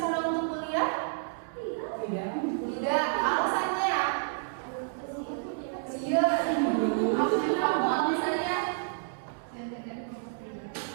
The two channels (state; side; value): silent; left; 58 dB below the other